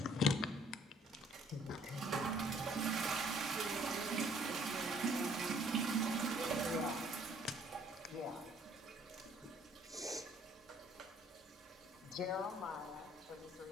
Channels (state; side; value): normal; both; correlation 0.61